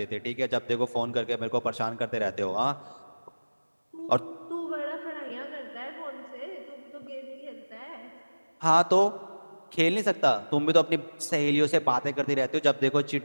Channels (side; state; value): both; inverted; correlation -1.00